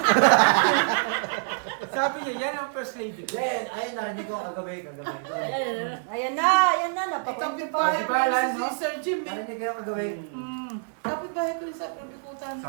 Sabi niya, yan ang first lady ko. Then, ayun, narinig ko kagabi. Ayan na, napakunti pa. Kapitbahay Katibayan, ko no? si Sir Jim. Narinig ko kagabi. Kapitbahay ko sa Probikutan.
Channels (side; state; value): left; silent; digital silence